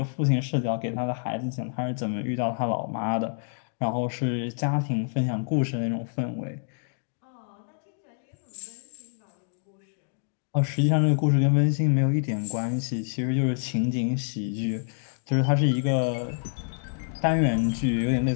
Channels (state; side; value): silent; right; digital silence